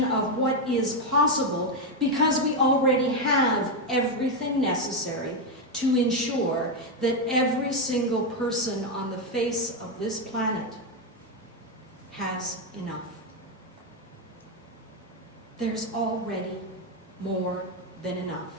of what is possible because we already have everything necessary to ensure that every single person on the face of this planet has enough. There's already more than enough.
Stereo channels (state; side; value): normal; both; correlation 0.06